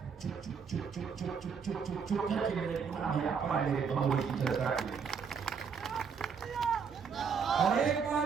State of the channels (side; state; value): left; quieter; 6.2 dB